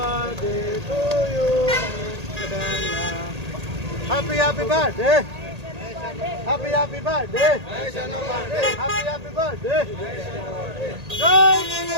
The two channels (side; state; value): left; late; 1.8 ms